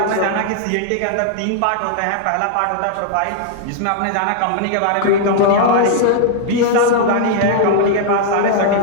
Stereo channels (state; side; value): different; both; correlation -0.01